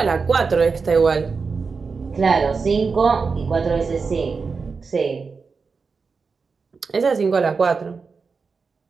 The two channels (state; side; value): quieter; left; 4.9 dB